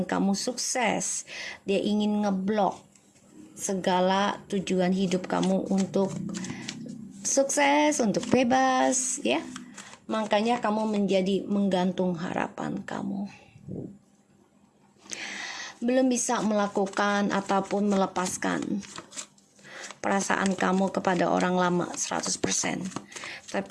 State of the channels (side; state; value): both; identical; correlation 1.00